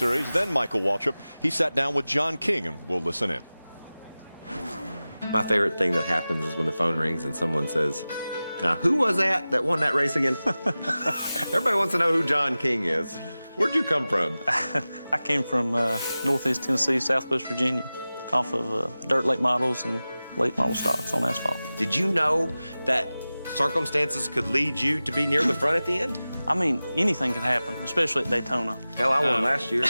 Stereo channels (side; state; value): both; inverted; correlation -0.97